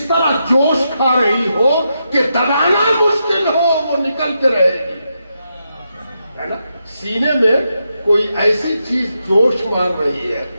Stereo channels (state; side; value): inverted; both; correlation -0.84